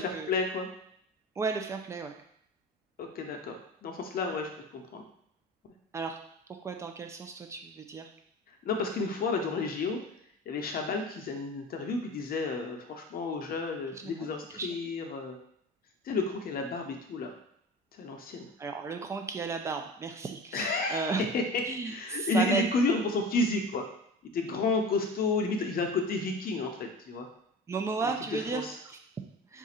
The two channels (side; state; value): both; normal; correlation 0.34